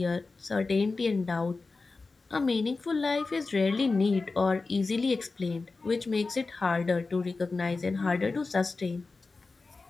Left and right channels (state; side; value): quieter; right; 3.9 dB